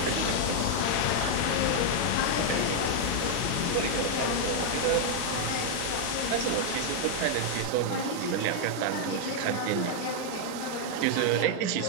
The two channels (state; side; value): different; both; correlation 0.00